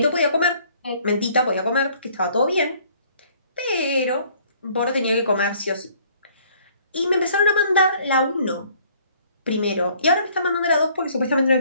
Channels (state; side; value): inverted; both; correlation -0.59